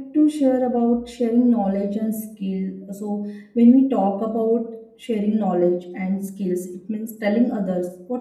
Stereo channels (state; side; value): identical; both; correlation 1.00